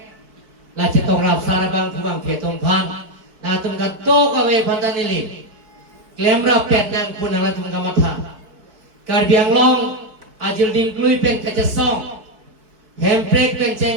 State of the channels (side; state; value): left; late; 4.6 ms